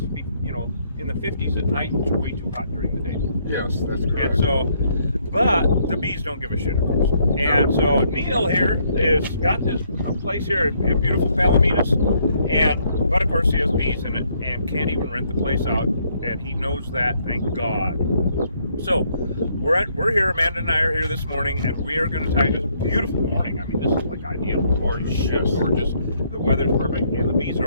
to be, you know, in the 50s at night. It's way too hot during the day. Yes, that's correct. And so, but the bees don't give a shit, of course. And so Neil here is got this place here in beautiful Palominas, but of course he has bees in it and can't even rent the place out, and he knows that, thank God. So we're here. Amanda and I are here this morning, and we are going to tie this beautiful morning. I mean, this is like ideal. Holy shit, gorgeous. The weather's perfect, and the bees are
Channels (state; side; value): inverted; both; correlation -0.69